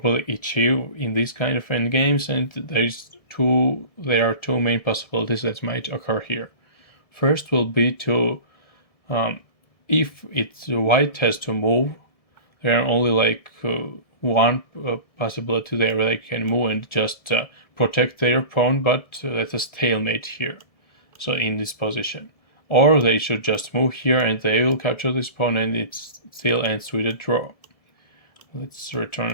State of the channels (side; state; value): right; late; 1.7 ms